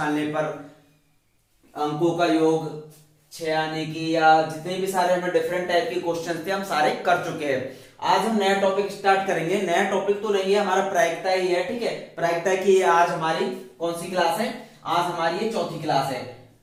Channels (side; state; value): both; identical; correlation 1.00